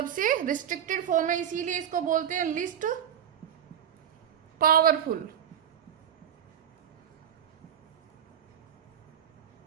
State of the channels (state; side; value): quieter; left; 9.3 dB